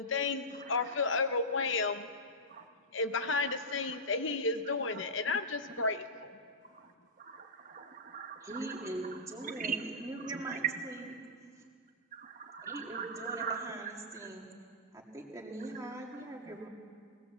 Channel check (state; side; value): normal; both; correlation -0.15